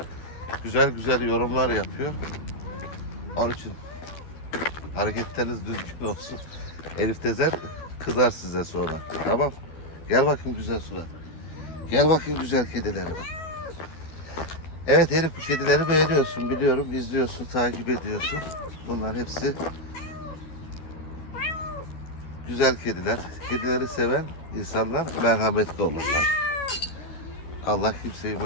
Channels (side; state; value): right; late; 12 ms